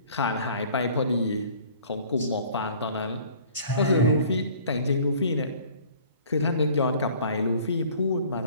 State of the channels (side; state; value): both; inverted; correlation -0.51